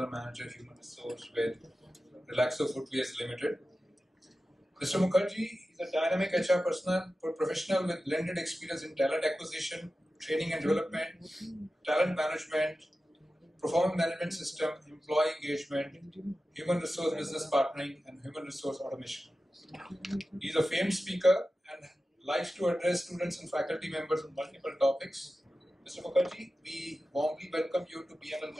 Manager, Human Resource with Relaxo Footwears Limited. Mr. Mukherjee is a dynamic HR professional with blended experience in talent acquisition, training and development, talent management, performance management system, employee engagement, human resource business partnering, and human resource automation. He is a famed speaker and likes to address students and faculty members on multiple topics. Mr. Mukherjee, we warmly welcome you to BML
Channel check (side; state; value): both; normal; correlation 0.94